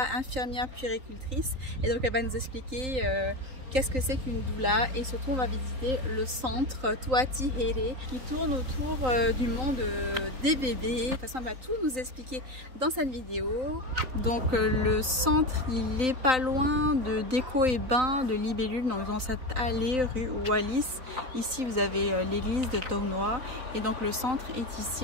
infirmière puéricultrice, et donc elle va nous expliquer qu'est-ce que c'est qu'une doula, et surtout on va visiter le centre Tuati Here qui tourne autour du monde des bébés. De toute façon elle va tout nous expliquer dans cette vidéo. Donc le centre il est pas loin de Déco et Bain de Libellule, dans cette allée rue Wallis. Ici vous avez l'église de Taunois, et donc le centre est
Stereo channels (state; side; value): late; left; 3.9 ms